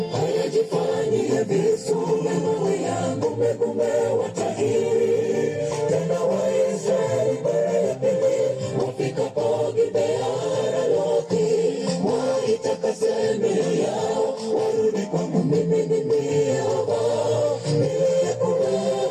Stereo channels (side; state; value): both; identical; correlation 1.00